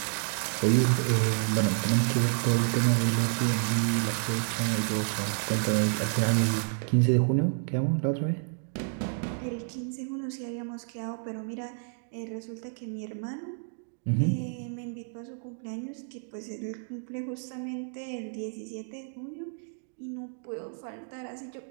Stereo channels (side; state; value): left; silent; 58 dB below the other